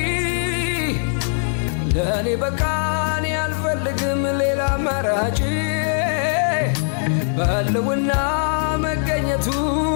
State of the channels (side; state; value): right; silent; 65 dB below the other